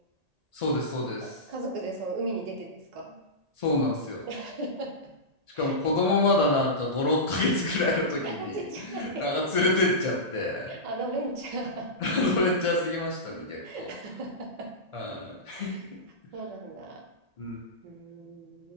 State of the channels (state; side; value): late; left; 1.8 ms